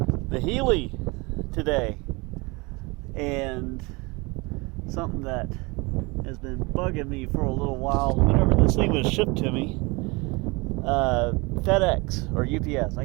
the Heli today, and something that has been bugging me for a little while. Whenever this thing was shipped to me, FedEx or UPS, I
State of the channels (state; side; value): quieter; left; 26.2 dB